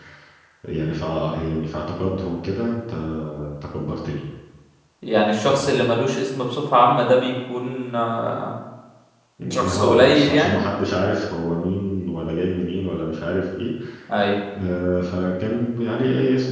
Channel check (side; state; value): both; identical; correlation 1.00